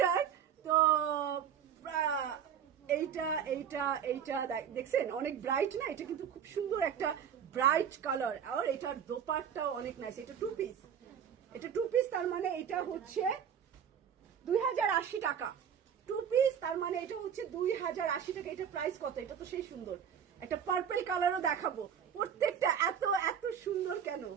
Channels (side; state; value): left; quieter; 8.3 dB